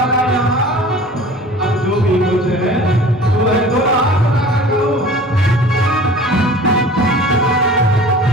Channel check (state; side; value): normal; both; correlation 0.43